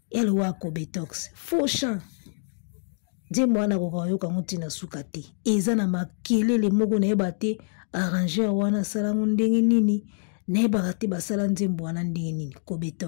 ele wako betox faux chant nzembo wana kokayoka yango ntina suka te eza na makelele moko nayeba te arrangeur wana salango ndenge nini nayebaka te basala nzembo wana ndenge nini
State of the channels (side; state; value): right; silent; digital silence